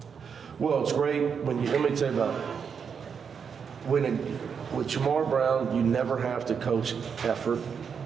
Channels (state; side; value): quieter; left; 6.6 dB